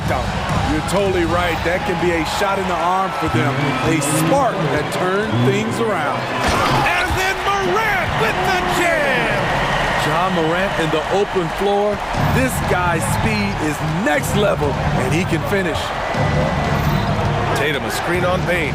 dunk. You're totally right. That can be a shot in the arm for them. A spark that turned things around. And then Morant with the jam. Ja Morant in the open floor. This guy's speed is next level, and he can finish. Tatum, a screen on Bane.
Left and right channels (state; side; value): identical; both; correlation 1.00